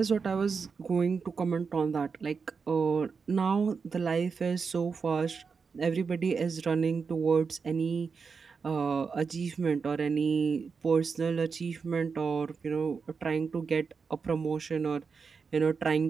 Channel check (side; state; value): left; quieter; 5.3 dB